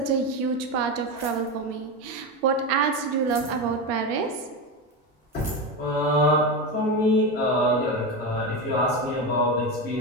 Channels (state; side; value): normal; both; correlation 0.17